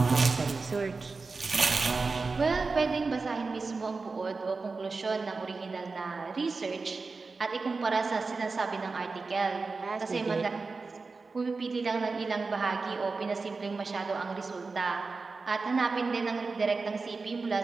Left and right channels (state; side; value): quieter; left; 4.1 dB